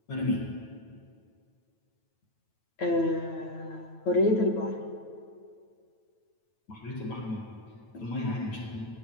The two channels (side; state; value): right; late; 9.1 ms